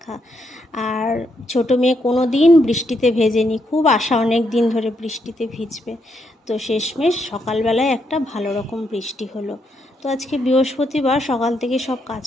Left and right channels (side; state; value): both; normal; correlation 0.78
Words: আর ছোটো মেয়ে কোনো দিন বৃষ্টিতে ভেজেনি, খুব আশা অনেক দিন ধরে বৃষ্টিতে ভিজবে। তো শেষমেশ সকালবেলায় একটা ভালো রকম বৃষ্টি হলো। তো আজকে বৃহস্পতিবার, সকাল থেকে সব